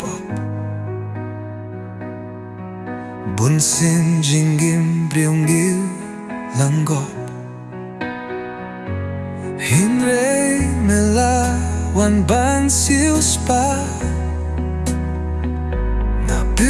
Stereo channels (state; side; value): identical; both; correlation 1.00